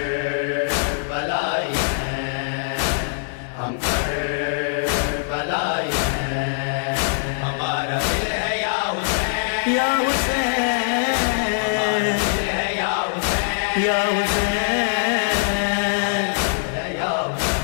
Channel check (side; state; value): right; silent; digital silence